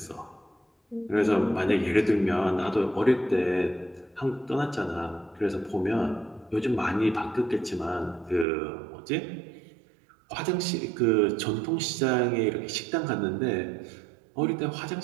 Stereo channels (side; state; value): left; drops out; at 8.5 s